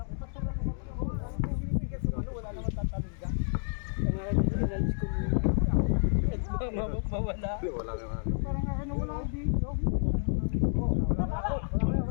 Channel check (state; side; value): silent; right; digital silence